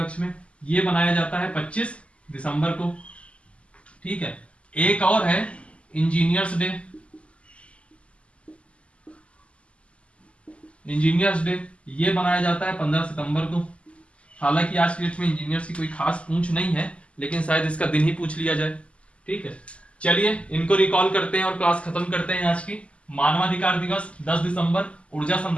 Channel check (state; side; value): late; right; 0.058 ms